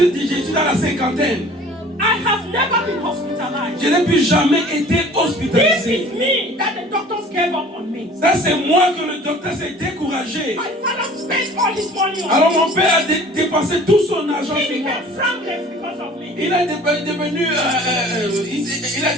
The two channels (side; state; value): both; normal; correlation 0.48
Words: suis dans la cinquantaine. I have never been hospitalized. Je n'ai plus jamais été This hospitalisé. is me that the doctors gave up on me. Ça, c'est moi que le docteur s'est découragé. My father spent all his money on Alors me. mon père a dépensé tout son argent He sur moi. became frankless because of me. Il a devenu, il a